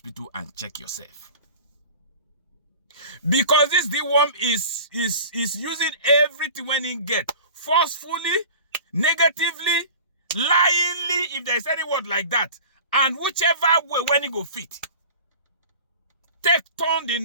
and check yourself. Because this Dworm is using everything when he get forcefully, negatively, lyingly, if there's any word like that, and whichever way when he go fit. Turn the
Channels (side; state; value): both; inverted; correlation -0.40